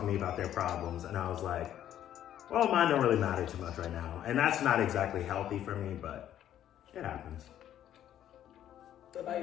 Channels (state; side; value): quieter; right; 11.2 dB